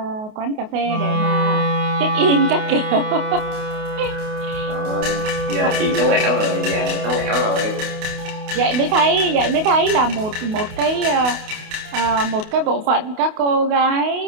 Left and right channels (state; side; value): late; left; 28 ms